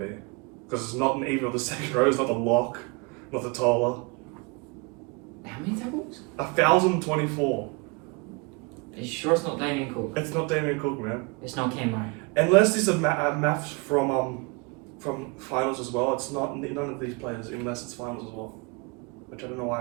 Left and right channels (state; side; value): quieter; left; 29.2 dB